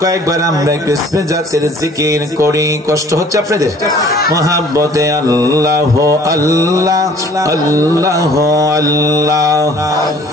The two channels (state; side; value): normal; both; correlation 0.53